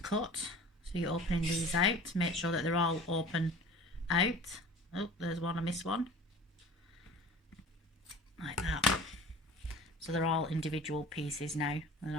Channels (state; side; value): normal; both; correlation 0.41